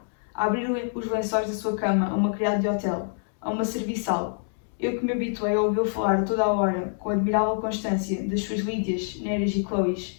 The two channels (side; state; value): right; silent; digital silence